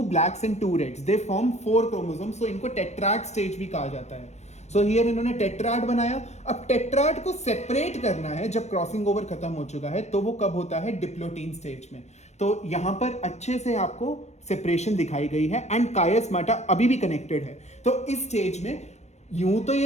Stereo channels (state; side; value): late; right; 0.32 ms